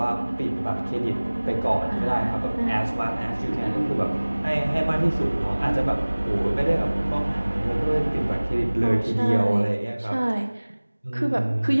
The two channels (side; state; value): both; inverted; correlation -1.00